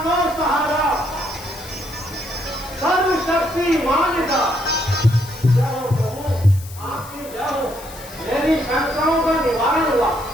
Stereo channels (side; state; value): left; noise; hiss, 17 dB below the sound